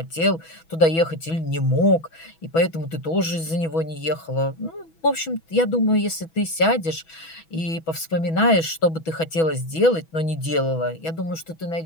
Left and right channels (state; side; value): late; right; 6.1 ms